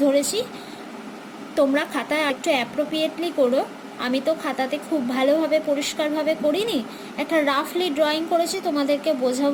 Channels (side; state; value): both; identical; correlation 1.00